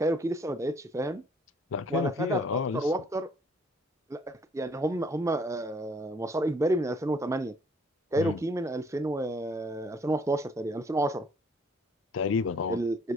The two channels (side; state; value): both; normal; correlation 0.61